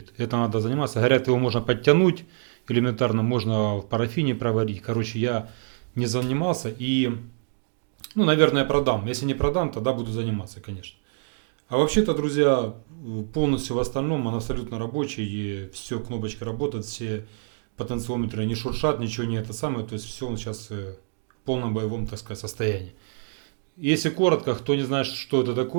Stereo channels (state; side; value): silent; left; digital silence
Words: это надо заниматься, говорят, его можно подтянуть, элементарно можно в парафине проварить, короче, я не занимался и, ну, наверное, продам, если не продам, тогда буду заниматься, конечно. А вообще-то, друзья, полностью в остальном он абсолютно рабочий, и все, кнопочка работает, все потенциометры не шуршат, ничего не это самое, то есть все он сейчас в полном боевом, так сказать, состоянии. Если коротко, кто не знает, что это